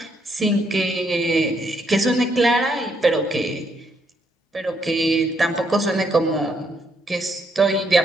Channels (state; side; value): normal; both; correlation 0.74